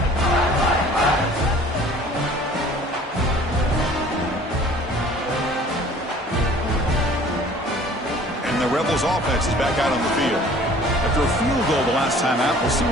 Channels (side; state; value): both; normal; correlation 0.50